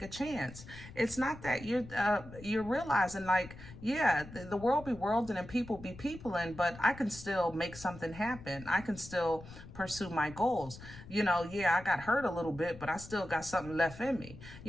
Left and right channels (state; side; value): noise; left; rumble, 16 dB below the sound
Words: a chance. It's not that you're realizing, like, yeah, the world be worlding and people be peopling, but I can still make something happen. I can still pursue my goals. You know, yeah, I got hurt a little bit, but I still got something left in me.